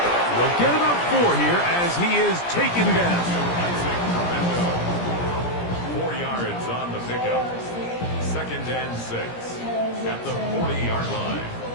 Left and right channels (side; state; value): right; late; 17 ms